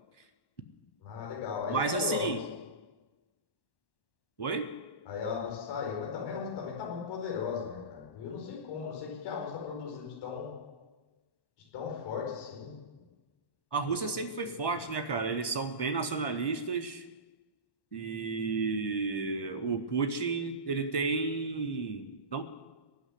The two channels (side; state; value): right; late; 1.1 ms